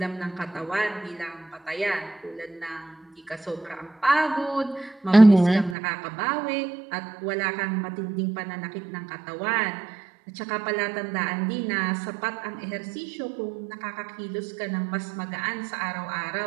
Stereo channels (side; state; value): left; drops out; at 5.8 s